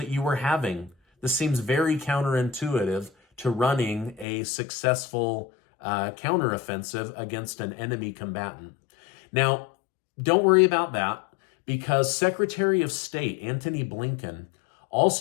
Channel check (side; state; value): right; drops out; at 4.2 s